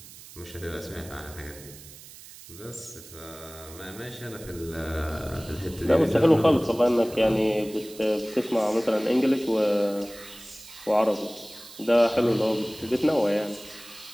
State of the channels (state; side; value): noise; right; hiss, 18 dB below the sound